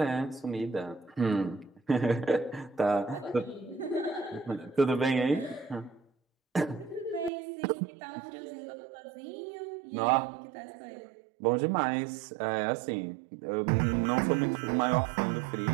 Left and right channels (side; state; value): left; drops out; at 7.3 s